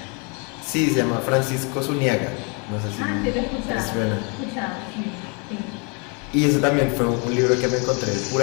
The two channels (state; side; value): quieter; right; 34.1 dB